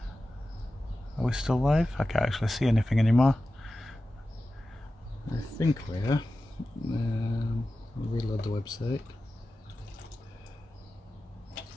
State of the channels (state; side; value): normal; both; correlation 0.94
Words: Are we still live? I can't actually see anything anymore. I think we are. I'll reload the website.